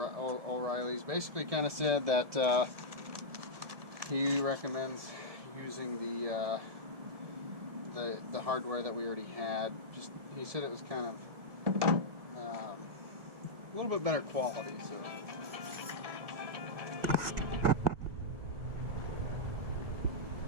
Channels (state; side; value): late; left; 1.6 ms